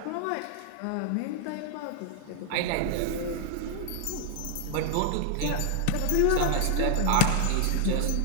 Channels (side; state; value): both; different; correlation 0.00